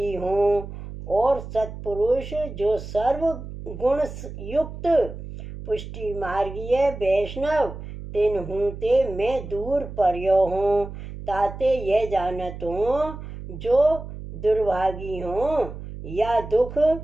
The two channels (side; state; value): right; noise; hum, 11 dB below the sound